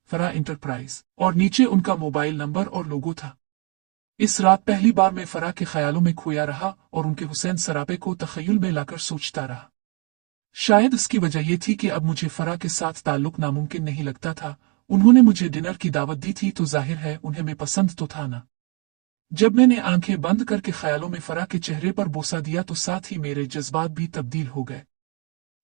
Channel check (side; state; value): left; quieter; 32.2 dB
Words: फरा इंटरप्राइज, और नीचे उनका मोबाइल नंबर और लोगो था। इस रात पहली बार मैं फरा के ख्यालों में खोया रहा और उनके हुसैन सरापे को तखय्युल में लाकर सोचता रहा। शायद इसकी वजह यह थी कि अब मुझे फरा के साथ ताल्लुक नामुमकिन नहीं लगता था। उन्होंने मुझे डिनर की दावत दी थी तो जाहिर है उन्हें मैं पसंद तो था ना। जब मैंने आंखें बंद करके ख्यालों में फरा के चेहरे पर बोसा दिया तो साथ ही मेरे जज्बात भी तब्दील हो गए।